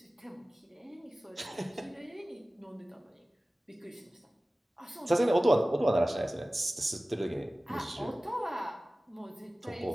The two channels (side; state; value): both; normal; correlation 0.97